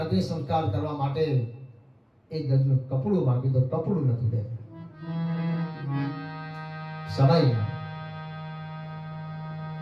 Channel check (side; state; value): both; identical; correlation 1.00